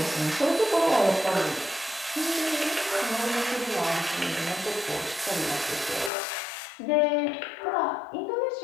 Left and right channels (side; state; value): right; drops out; at 6.1 s